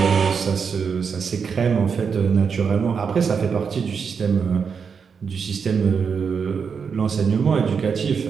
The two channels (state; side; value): quieter; left; 6.1 dB